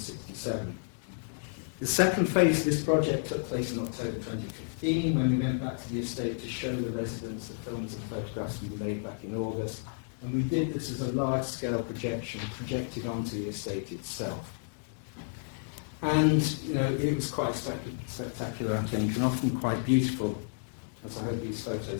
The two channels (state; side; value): silent; right; digital silence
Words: The second phase of this project took place in October 2015 when we went back to the estate to show the residents the films and photographs we made back in August, and we did this as a large-scale projection projected onto the estate itself. And, you know, it was quite spectacular, I think, and often quite beautiful, as I hope these